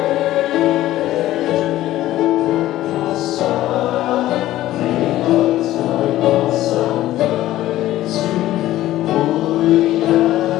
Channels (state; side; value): quieter; right; 14.8 dB